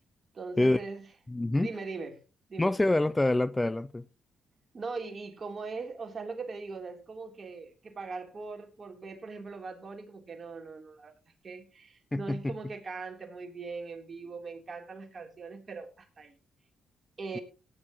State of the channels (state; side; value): normal; both; correlation 0.96